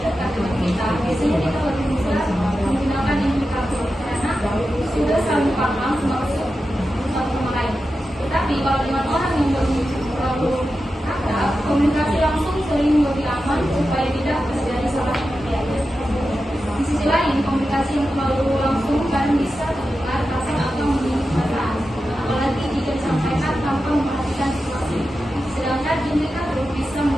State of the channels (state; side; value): normal; both; correlation 0.91